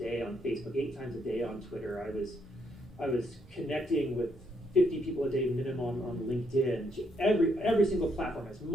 on Facebook, 8 times a day on Twitter. I was connecting with 50 people a day minimum on LinkedIn, every single platform, as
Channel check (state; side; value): normal; both; correlation 0.74